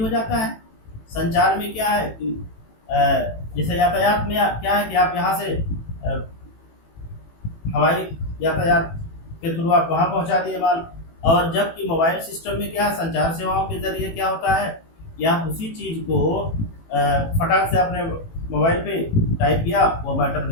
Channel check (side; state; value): right; late; 18 ms